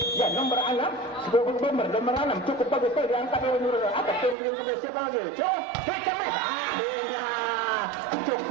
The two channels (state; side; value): drops out; left; at 4.4 s